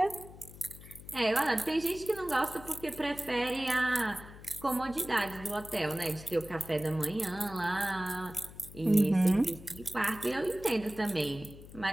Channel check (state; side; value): noise; left; hum, 17 dB below the sound